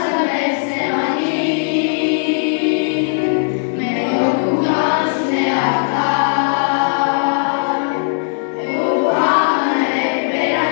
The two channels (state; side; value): silent; right; digital silence